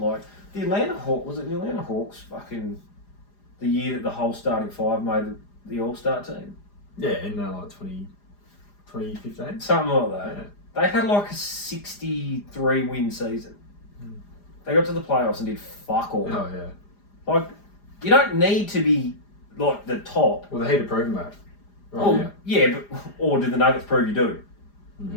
the Atlanta Hawks fucking the year that the whole starting five made the All-Star team. Yeah, in 2015. Something like that. Yeah. They had like a 63 win season. They got to the playoffs and did fuck all. Oh yeah. Like you don't need to be like the top. Well, the Heat have proven that. Right, Oh yeah, but or did the Nuggets prove you do?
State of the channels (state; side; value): late; right; 4.9 ms